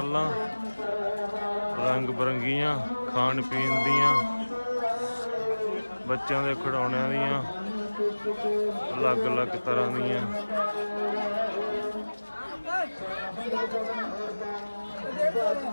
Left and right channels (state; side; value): inverted; both; correlation -1.00